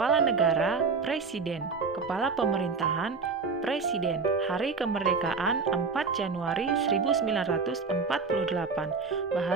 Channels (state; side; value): quieter; left; 4.7 dB